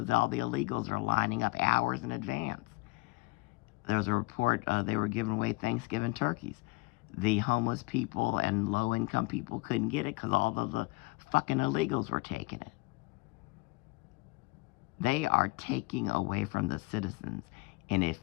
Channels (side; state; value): right; quieter; 24.4 dB